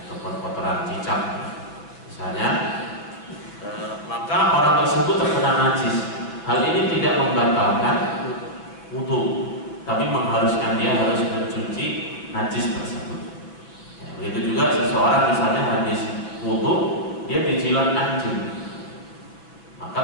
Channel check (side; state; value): right; late; 6.2 ms